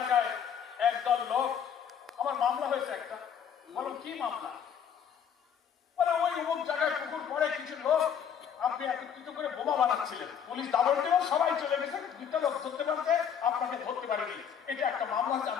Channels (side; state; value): right; quieter; 8.1 dB